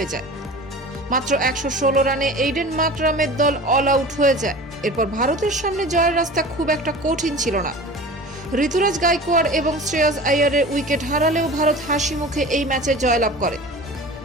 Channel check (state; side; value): normal; both; correlation 0.37